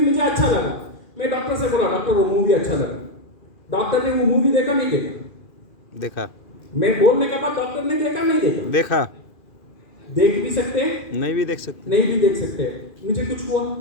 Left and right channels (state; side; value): late; right; 2.4 ms